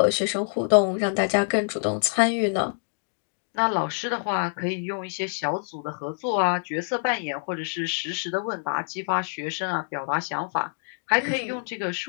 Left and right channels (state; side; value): silent; right; digital silence